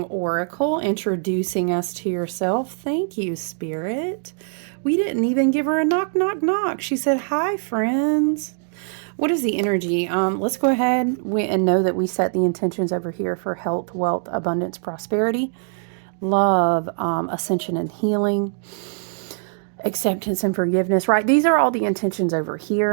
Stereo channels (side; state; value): left; silent; digital silence